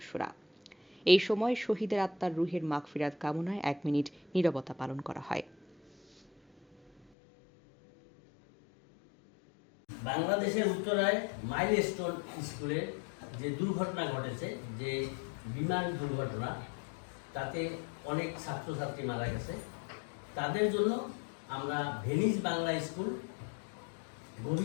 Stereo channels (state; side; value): drops out; right; at 7.0 s